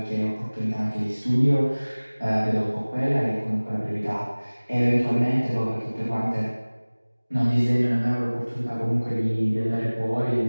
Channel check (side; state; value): both; inverted; correlation -1.00